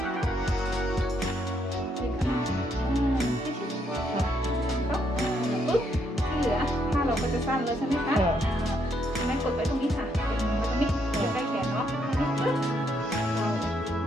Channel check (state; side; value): normal; both; correlation 0.74